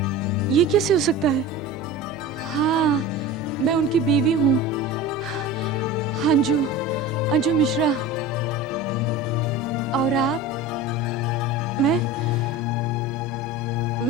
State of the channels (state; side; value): normal; both; correlation 0.33